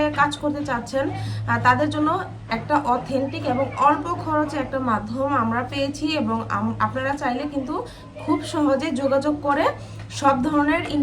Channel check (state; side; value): identical; both; correlation 1.00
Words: কাজ করতে চাচ্ছেন, তাদের জন্য একটা অথেন্টিক এবং অল্প খরচে একটা মাধ্যম আমরা পেয়েছি, এবং আপনারা চাইলে কিন্তু খুব সহজে যোগাযোগ করে সব ধরনের